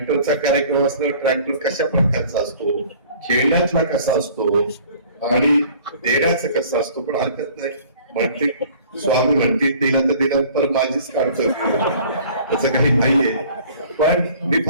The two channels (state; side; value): inverted; both; correlation -0.51